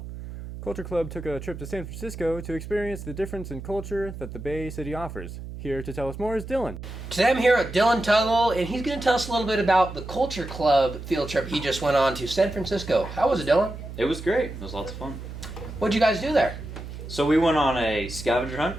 Culture Club took a trip to San Francisco to experience the difference in culture that the Bay City offers. Here to tell us more is Dylan. Today I'm here with Dylan Tuggle, and he's going to tell us a little bit about the Culture Club field trip he just went on to San Francisco. How was it, Dylan? It was great. It was lots of fun. What'd you guys do there? So we went on a scavenger hunt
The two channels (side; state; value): right; noise; hum, 10 dB below the sound